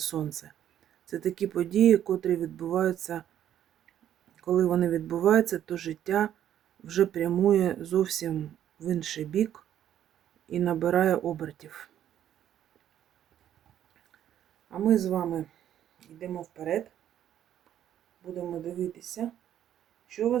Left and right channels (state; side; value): quieter; left; 10.8 dB